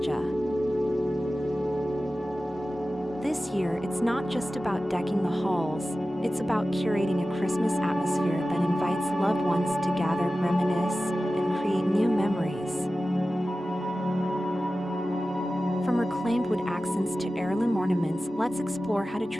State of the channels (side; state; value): both; normal; correlation 0.95